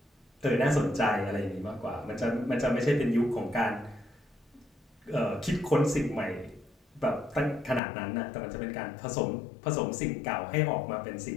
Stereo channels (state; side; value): drops out; right; at 7.8 s